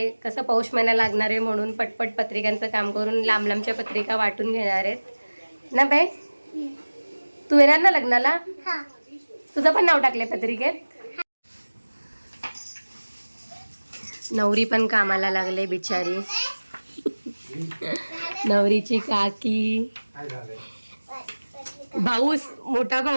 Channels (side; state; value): both; inverted; correlation -1.00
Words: कसं पौष महिना लागणार आहे म्हणून पटपट पत्रिकांचं काम करून लांब लांबच्या पत्रिका वाटून घेणार आहेत ना बाई. तू येणार ना लग्नाला? हा. तुझं पण नाव टाकलंय पत्रिकेत. नवरी पण कामाला लागले बिचारी. नवरीची काकी, भाऊस, मोठा